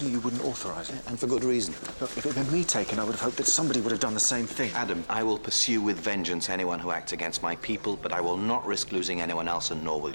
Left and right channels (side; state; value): both; inverted; correlation -1.00